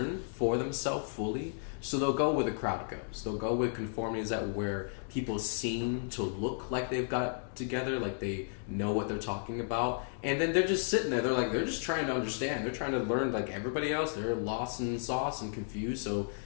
for themselves fully. So they'll go where the crowd goes. They'll go with conformity, is that where people seem to look like they've got it together, like they know what they're talking about. And then they're just sitting there. They're just trying to understand. They're trying to learn like everybody else. They're lost in sauce and confused. So,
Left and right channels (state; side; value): silent; right; digital silence